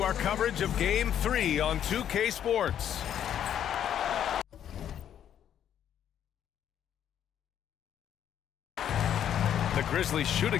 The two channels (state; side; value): quieter; right; 9.9 dB